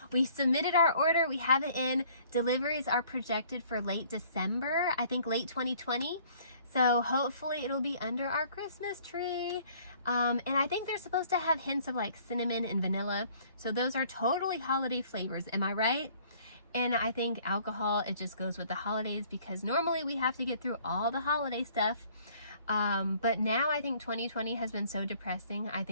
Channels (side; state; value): both; inverted; correlation -0.57